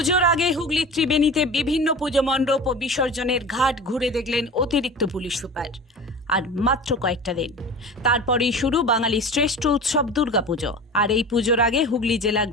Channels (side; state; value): both; normal; correlation 0.35